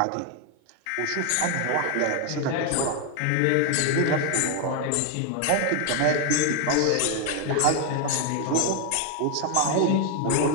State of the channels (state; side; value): different; both; correlation 0.01